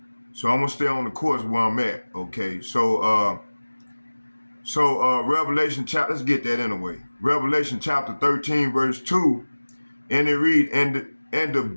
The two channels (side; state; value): both; inverted; correlation -1.00